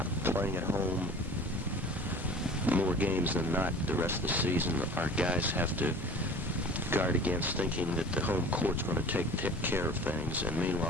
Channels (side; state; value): both; normal; correlation 0.42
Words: Playing at home more games than not the rest of the season, our guys have to guard against thinking that the home court's going to take care of things, and